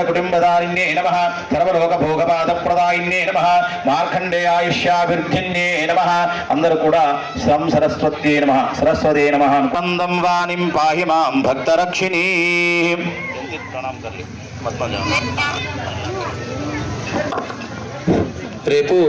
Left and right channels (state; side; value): identical; both; correlation 1.00